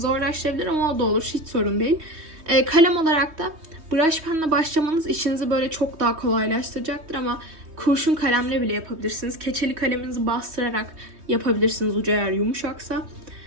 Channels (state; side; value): late; left; 3.2 ms